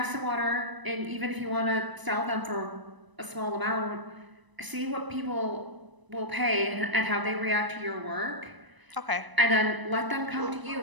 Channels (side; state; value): left; late; 1.0 ms